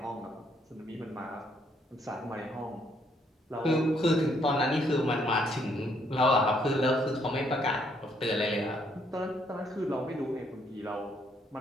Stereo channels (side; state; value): both; normal; correlation 0.70